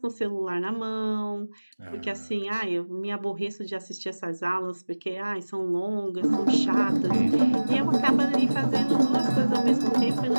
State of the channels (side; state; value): both; inverted; correlation -1.00